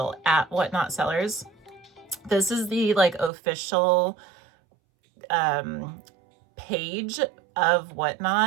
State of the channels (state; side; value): drops out; left; at 3.3 s